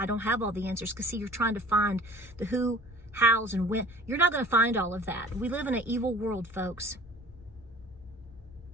don't have all the answers. Because see, you're trying to find the who, hows, and when. You're not going to find all of that. We live in an evil world, folks.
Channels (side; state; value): both; normal; correlation 0.46